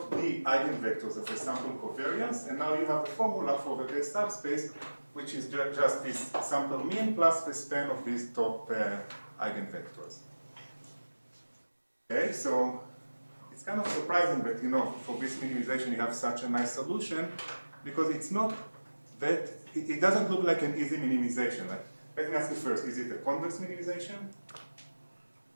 D eigenvectors of the sample covariance, and now you have a formula for the base subspace, which is just this sample mean plus the span of these top eigenvectors. Okay, so it's kind of surprising that, you know, for this minimization you have such a nice solution, because it's not that, it doesn't look like an easy minimization. Like, let me ask you first, is it a convex minimization?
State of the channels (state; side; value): inverted; both; correlation -1.00